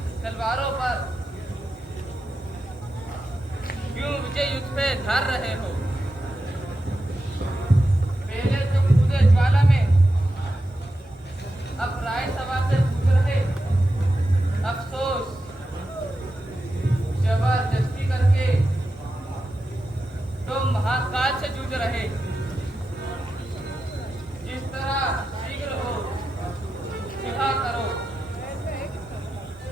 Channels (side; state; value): both; normal; correlation 0.90